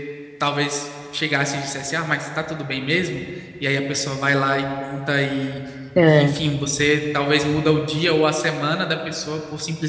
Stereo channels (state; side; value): identical; both; correlation 1.00